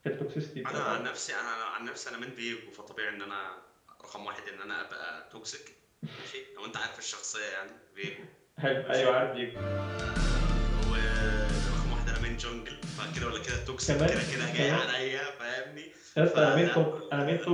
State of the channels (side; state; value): both; identical; correlation 1.00